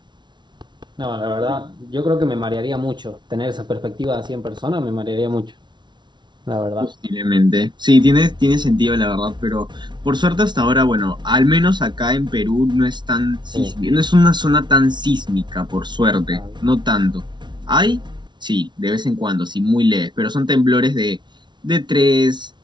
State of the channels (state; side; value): late; left; 0.22 ms